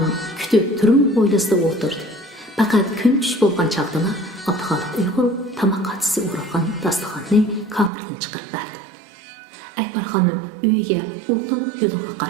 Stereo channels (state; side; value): drops out; left; at 7.9 s